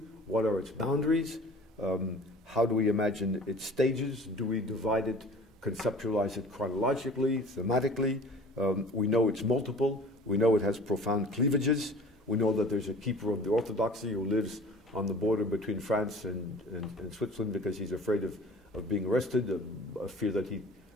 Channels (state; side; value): normal; both; correlation 0.45